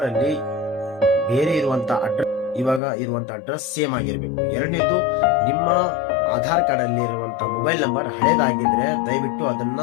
ಅಲ್ಲಿ ಬೇರೆ ಇರುವಂತ ಅಡ್ರೆಸ್ ಇವಾಗ ಇರುವಂತ ಅಡ್ರೆಸ್ ಸೇಮ್ ಆಗಿರ್ಬೇಕು. ಎರಡನೇದು, ನಿಮ್ಮ ಆಧಾರ್ ಕಾರ್ಡ್ ಅಲ್ಲಿ ಇರುವಂತ ಮೊಬೈಲ್ ನಂಬರ್ ಹಳೇದಾಗಿದ್ರೆ ದಯವಿಟ್ಟು ಅದನ್ನ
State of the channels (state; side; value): drops out; right; at 2.8 s